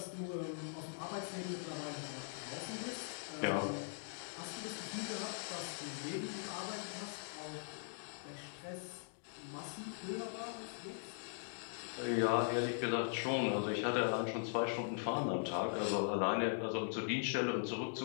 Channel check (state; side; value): silent; right; digital silence